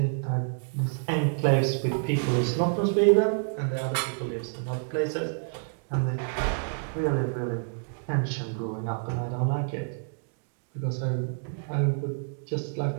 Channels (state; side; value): silent; left; digital silence